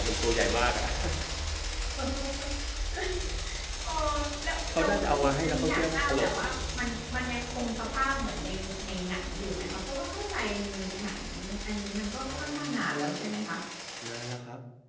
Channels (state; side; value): identical; both; correlation 1.00